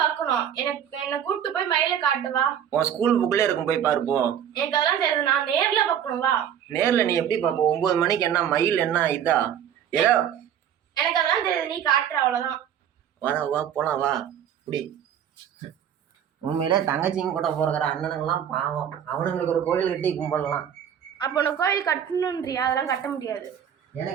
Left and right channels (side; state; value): left; quieter; 9.3 dB